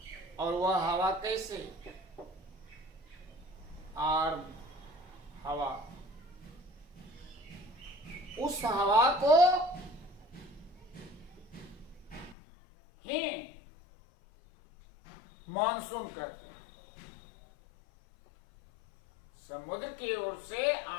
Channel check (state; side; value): drops out; right; at 12.4 s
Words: और वह हवा कैसे? आर्द्र हवा। उस हवा को ही मानसून कहते हैं। समुद्र की ओर से